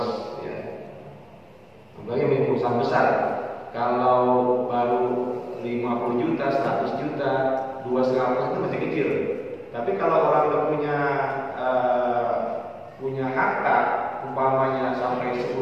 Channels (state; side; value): identical; both; correlation 1.00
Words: Ya. Apalagi yang perusahaan besar, kalau baru 50 juta, 100 juta, 2,5% itu masih kecil. Tapi kalau orang udah punya harta, umpamanya sampai